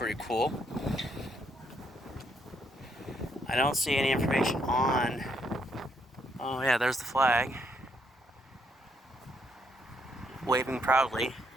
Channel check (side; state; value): both; normal; correlation 0.73